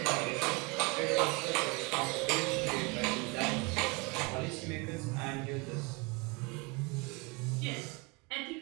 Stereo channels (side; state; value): left; quieter; 27.7 dB